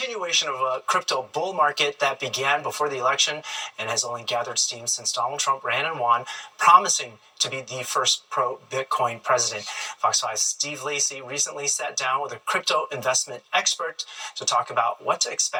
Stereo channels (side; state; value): both; identical; correlation 1.00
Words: of a crypto bull market that began before the election and has only gathered steam since Donald Trump ran and won, promising to be the first pro-Bitcoin president. Fox 5's Steve Lacy recently sat down with a crypto investment expert to talk about what to